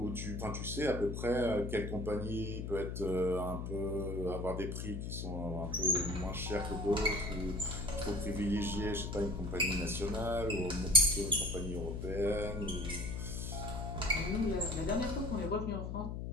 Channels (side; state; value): left; noise; hum, 4 dB below the sound